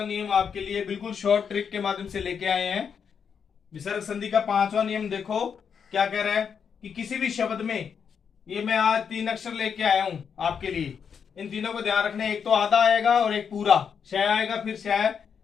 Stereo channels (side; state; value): right; quieter; 6.9 dB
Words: नियम आपके लिए बिल्कुल शॉर्ट ट्रिक के माध्यम से लेके आए हैं। विसर्ग संधि का 5वां नियम देखो क्या कह रहा है कि किसी भी शब्द में, ये मैं आज 3 अक्षर लेके आया हूं आपके लिए। इन तीनों को ध्यान रखना है। एक तो आधा आएगा और एक पूरा, शय आएगा फिर शय,